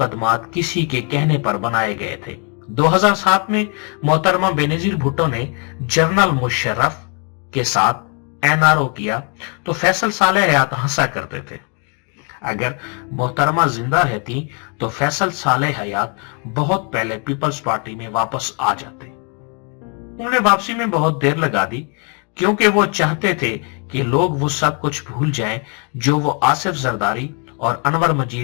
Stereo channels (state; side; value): quieter; right; 37.2 dB